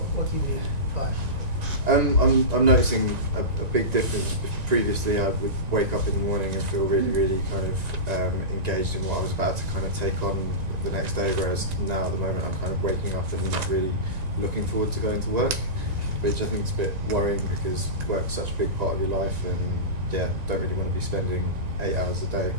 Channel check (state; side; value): late; left; 1.9 ms